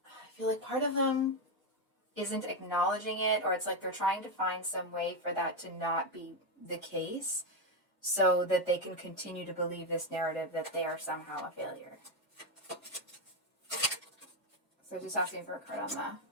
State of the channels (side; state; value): both; normal; correlation 0.07